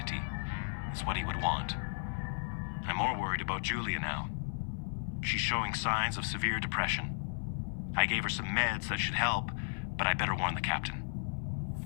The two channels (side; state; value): right; silent; 55 dB below the other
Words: It's what he would want. I'm more worried about Julia now. She's showing signs of severe depression. I gave her some meds that should help, but I better warn the captain.